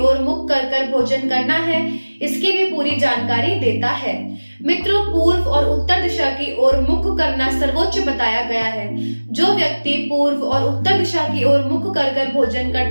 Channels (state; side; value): inverted; both; correlation -1.00